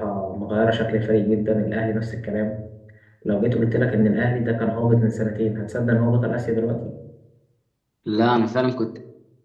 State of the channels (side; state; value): both; identical; correlation 1.00